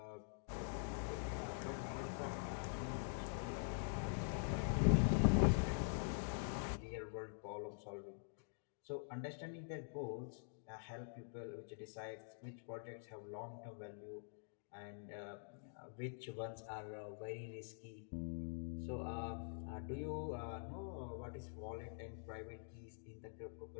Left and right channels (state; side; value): silent; right; digital silence